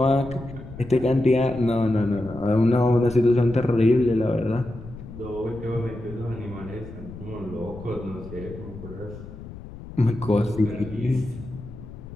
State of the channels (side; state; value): left; noise; rumble, 14 dB below the sound